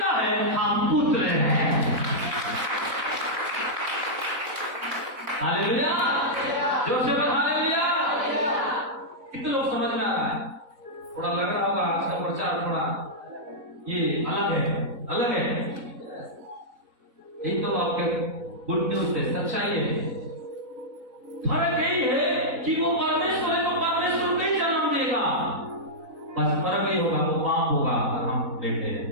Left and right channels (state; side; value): late; left; 4.0 ms